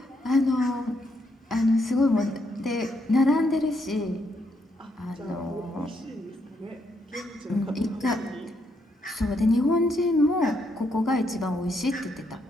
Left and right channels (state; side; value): normal; both; correlation 0.76